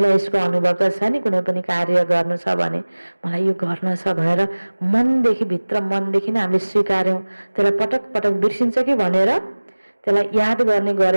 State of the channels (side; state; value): both; inverted; correlation -1.00